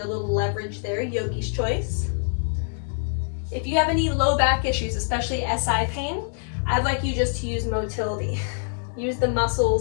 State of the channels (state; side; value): silent; right; 62 dB below the other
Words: little leverage there, yogi's choice. If you have any low back issues, especially SI pain, I'd like you just to use motility. Use the